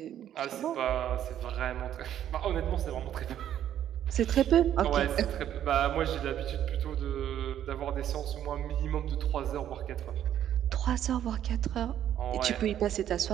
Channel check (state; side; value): quieter; left; 10.8 dB